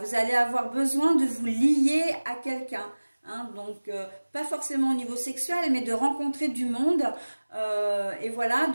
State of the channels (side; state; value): both; inverted; correlation -1.00